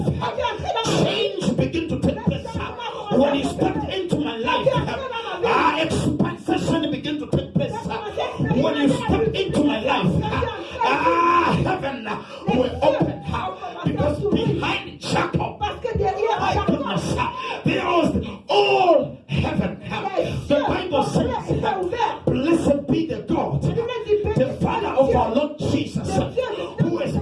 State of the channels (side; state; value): both; identical; correlation 1.00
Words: change began to take place. When you stepped into my life, expansion began to take place. When you stepped into my life, heaven will open. Because behind Jacob, my goodness, there was all heaven. The Bible says, blessed be the God, the Father of our Lord Jesus, who has